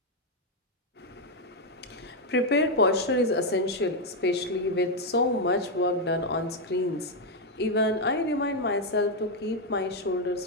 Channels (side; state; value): both; normal; correlation 0.01